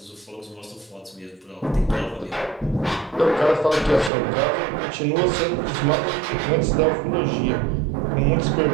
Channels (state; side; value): drops out; left; at 4.1 s